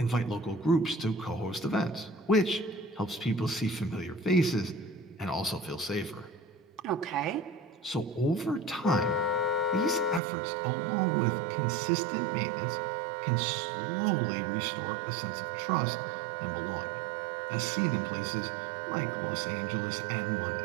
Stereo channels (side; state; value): left; drops out; at 10.2 s